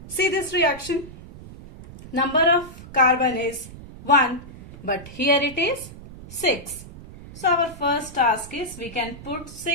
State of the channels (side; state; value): right; noise; rumble, 16 dB below the sound